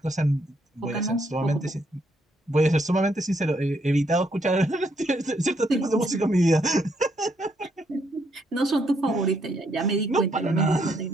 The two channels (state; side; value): normal; both; correlation 0.74